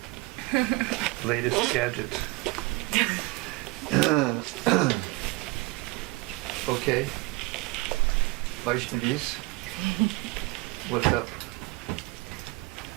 Latest gadget. Okay. Vaishnavis, what's up?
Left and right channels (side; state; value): left; quieter; 23.4 dB